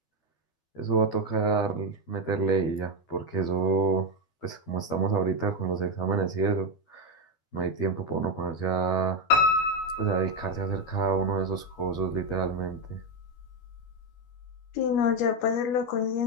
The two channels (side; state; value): right; late; 12 ms